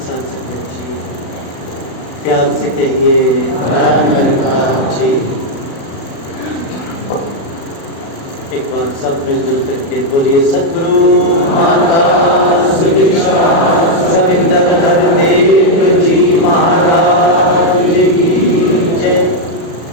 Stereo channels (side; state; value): right; late; 36 ms